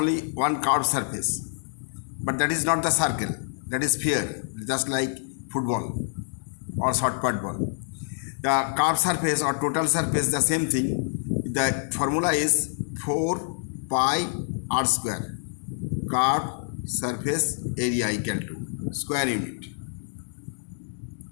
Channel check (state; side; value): silent; right; digital silence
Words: one curved surface, but that is not the circle. That is sphere, just like football or short put ball. The curved surface or total surface, the same thing. The formula is 4 pi r square. Curved surface area equal to square unit,